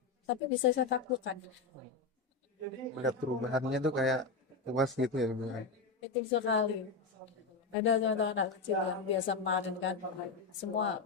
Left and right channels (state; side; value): quieter; right; 4.3 dB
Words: tapi bisa saya taklukkan. Melihat perubahannya tuh kayak puas gitu ya, Ibu ya? Itu sekali. Ada contoh anak kecil yang biasa kemarin kan, semua